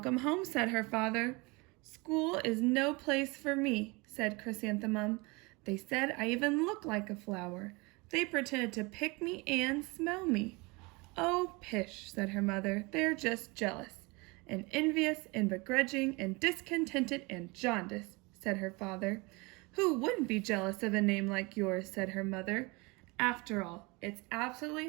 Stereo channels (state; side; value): quieter; left; 26.4 dB